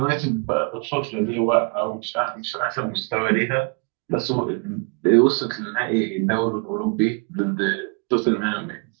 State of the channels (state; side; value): quieter; left; 33.9 dB